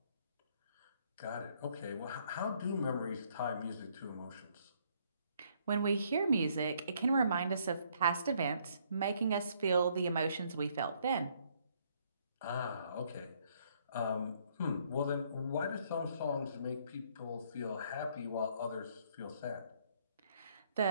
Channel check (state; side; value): inverted; both; correlation -0.67